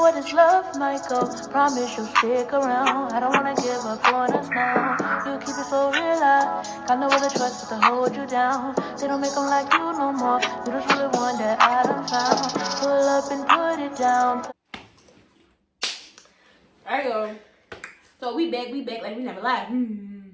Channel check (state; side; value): identical; both; correlation 1.00